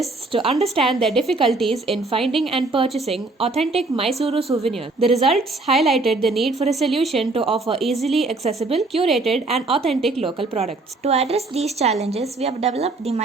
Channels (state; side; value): quieter; left; 3.3 dB